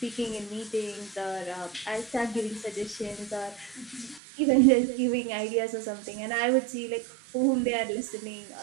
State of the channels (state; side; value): drops out; left; at 4.2 s